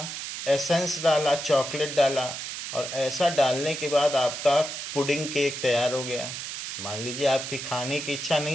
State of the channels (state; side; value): noise; right; hiss, 7 dB below the sound